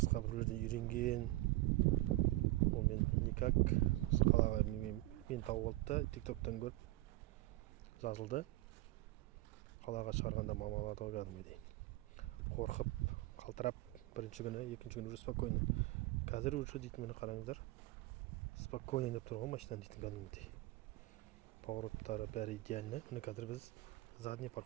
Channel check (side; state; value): left; quieter; 18.9 dB